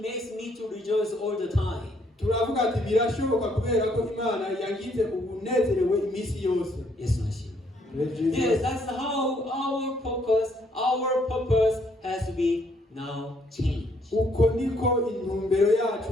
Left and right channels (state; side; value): normal; both; correlation 0.68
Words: makes me to rejoice all the time. Yes, that's how our purpose has to be now changed. Why